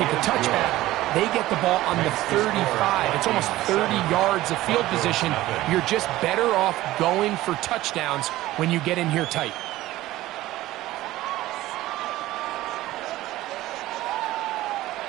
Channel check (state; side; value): quieter; left; 16.4 dB